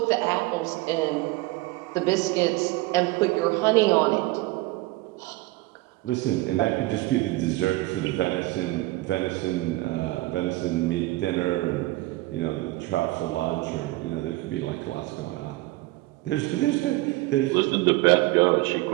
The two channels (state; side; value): quieter; left; 20.0 dB